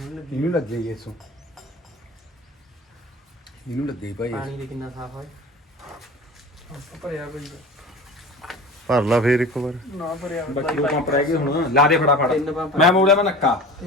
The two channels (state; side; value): normal; both; correlation 0.37